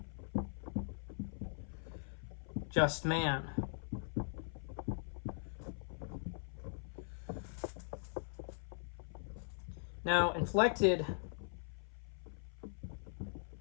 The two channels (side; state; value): right; silent; 50 dB below the other